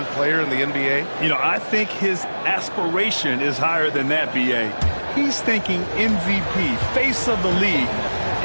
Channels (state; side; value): inverted; both; correlation -1.00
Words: player in the NBA? You know, I think his aspiration is higher than that, B.A. He's thinking MVP, face of the league.